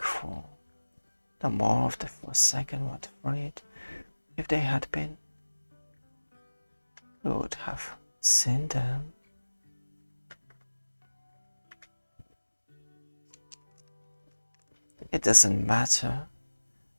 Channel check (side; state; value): both; inverted; correlation -1.00